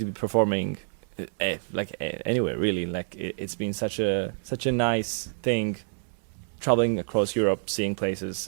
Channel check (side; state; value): left; silent; digital silence